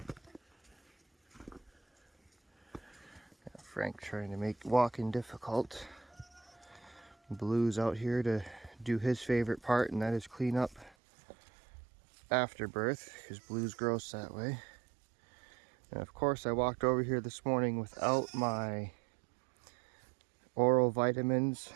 Frank trying to make walking difficult. Blue's out here to do his favorite part, and that is clean up after birth, because Blue's gross that way. And of course I walked over here this morning without my oral vitamins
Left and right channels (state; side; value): drops out; left; at 11.0 s